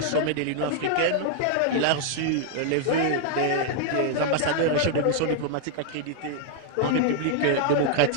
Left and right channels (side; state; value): both; different; correlation -0.01